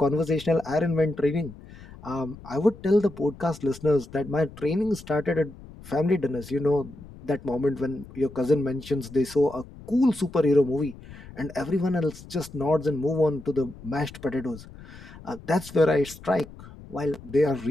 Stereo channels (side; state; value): left; noise; rumble, 18 dB below the sound